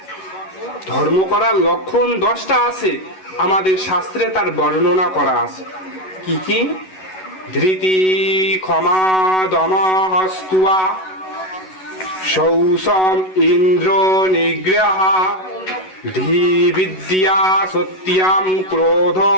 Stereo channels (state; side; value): late; right; 11 ms